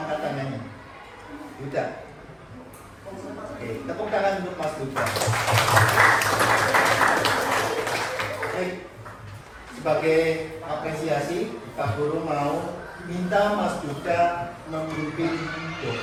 tangannya. Yuda. Oke, tepuk tangan untuk Mas Yuda. Baik, sebagai apresiasi, Pak Guru mau minta Mas Yuda memimpin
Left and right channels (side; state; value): both; identical; correlation 1.00